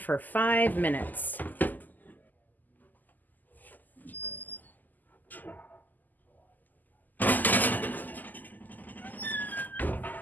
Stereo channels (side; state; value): right; late; 0.084 ms